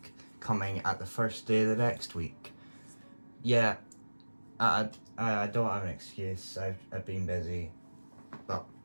coming at the first day of the next week. Yeah, I don't have an excuse, I've been busy, but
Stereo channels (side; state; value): both; inverted; correlation -1.00